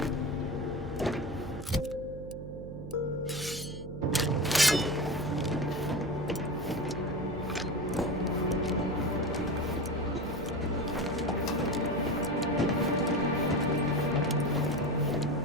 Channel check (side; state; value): right; noise; hum, 12 dB below the sound